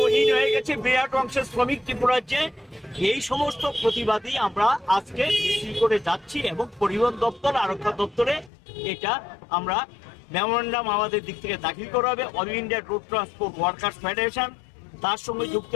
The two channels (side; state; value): right; drops out; at 8.5 s